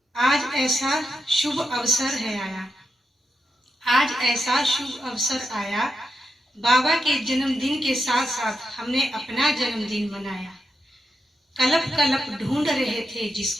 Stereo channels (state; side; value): normal; both; correlation 0.85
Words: आज ऐसा शुभ अवसर है आया, आज ऐसा शुभ अवसर आया, बाबा के जन्मदिन के साथ साथ हमने अपना जन्मदिन मनाया। कलप कलप ढूंढ रहे थे